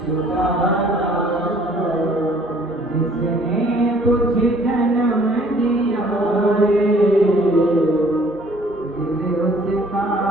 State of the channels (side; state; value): both; normal; correlation 0.58